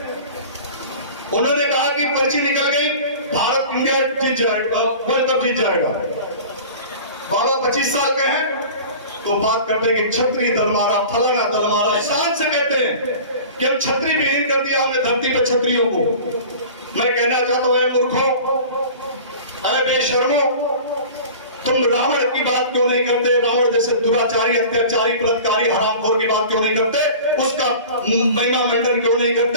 उन्होंने कहा कि पर्ची निकल गई, भारत इंडिया जीत जाएगा, वर्ल्ड कप जीत जाएगा। बाबा 25 साल के हैं तो बात करते हैं कि क्षत्रिय दल मारा, फलाना दल मारा, शान से कहते हैं कि हम छत्री विहीन कर दिया हमने धरती पर क्षत्रियों को। मैं कहना चाहता हूं, मूर्खों, अरे बेशर्मो, तुम रावण की बात क्यों नहीं करते? रावण जैसे दुराचारी, अत्याचारी, बलात्कारी, हरामखोर की बात क्यों नहीं करते? उसका महिमा मंडन क्यों नहीं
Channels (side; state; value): both; inverted; correlation -0.40